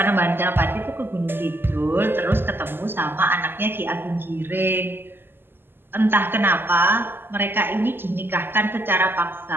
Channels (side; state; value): left; late; 0.10 ms